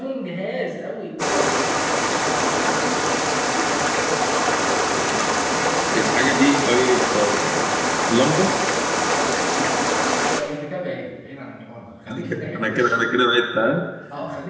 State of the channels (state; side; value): identical; both; correlation 1.00